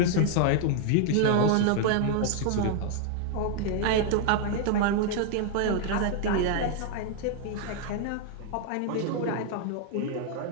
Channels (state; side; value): different; both; correlation 0.00